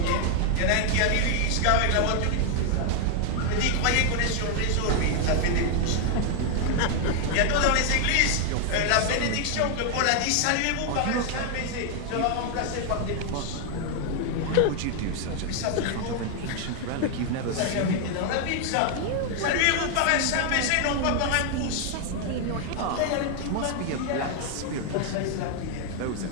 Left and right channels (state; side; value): different; both; correlation 0.00